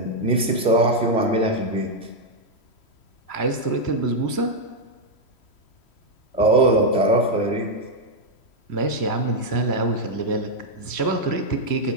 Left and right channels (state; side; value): late; right; 3.1 ms